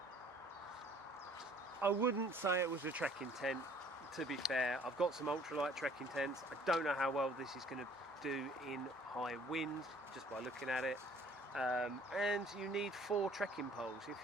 I wouldn't say it was a trekking tent, to be fair. I've got some ultralight trekking tents. I don't know how well this is going to do in high wind, just by looking at it. And you need 4 trekking poles. If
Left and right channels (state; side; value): normal; both; correlation 0.56